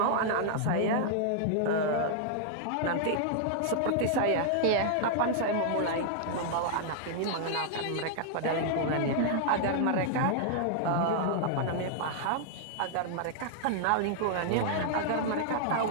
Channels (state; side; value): different; both; correlation -0.01